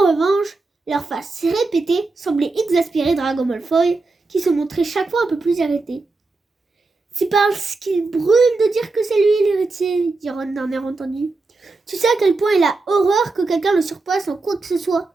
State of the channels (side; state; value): left; quieter; 3.6 dB